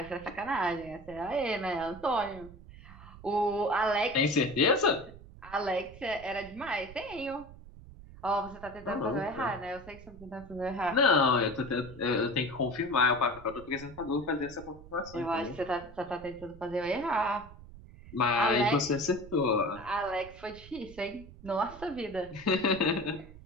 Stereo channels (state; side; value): noise; right; rumble, 18 dB below the sound